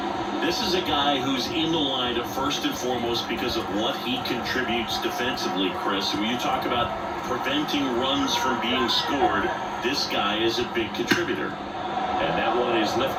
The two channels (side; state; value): both; identical; correlation 1.00